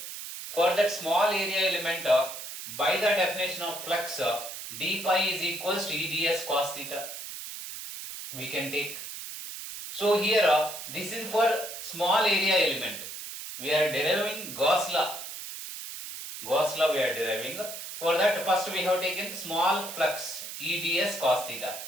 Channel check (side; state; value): right; noise; hiss, 9 dB below the sound